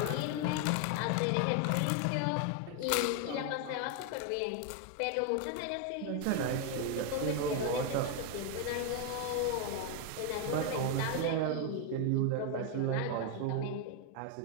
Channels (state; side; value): different; both; correlation 0.01